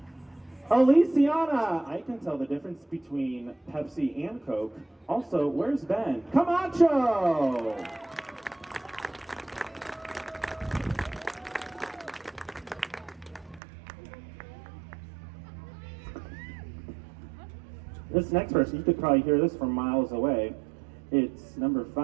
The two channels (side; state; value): left; drops out; at 13.6 s